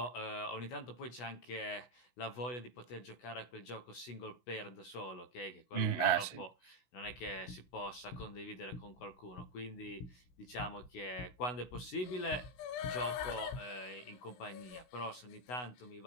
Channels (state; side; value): late; right; 16 ms